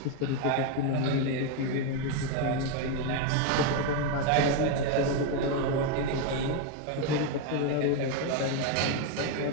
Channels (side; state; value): both; different; correlation 0.02